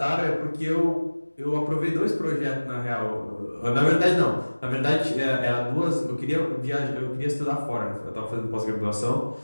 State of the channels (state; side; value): inverted; both; correlation -1.00